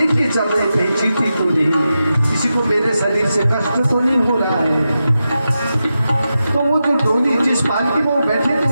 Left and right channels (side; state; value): both; inverted; correlation -0.90